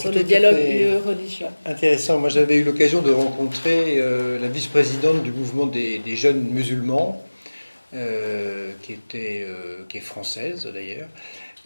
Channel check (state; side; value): inverted; both; correlation -1.00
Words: c'est le tout à dialogue fait UE-religion. intéressant. Moi, j'avais eu l'occasion de rencontrer la vice-présidente du mouvement des jeunes musulmans, qui est française d'ailleurs,